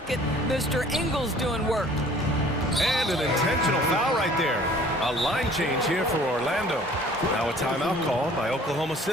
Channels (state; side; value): normal; both; correlation 0.52